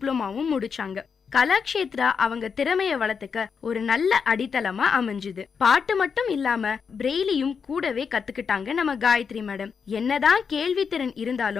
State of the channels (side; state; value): right; quieter; 6.1 dB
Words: முடிச்சாங்க. கலாக்ஷேத்ரா அவங்க திறமைய வளர்த்துக்க ஒரு நல்ல அடித்தளமா அமைஞ்சுது. பாட்டு மட்டும் இல்லாம பிரெய்லியும் கூடவே கத்துக்கிட்டாங்க நம்ம காயத்ரி மேடம். என்னதான் கேள்வி திறன்